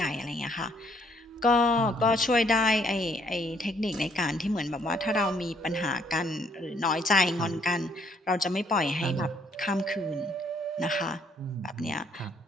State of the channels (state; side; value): normal; both; correlation 0.67